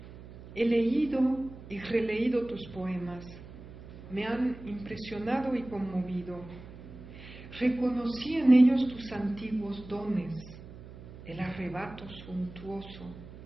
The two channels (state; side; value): noise; right; hum, 16 dB below the sound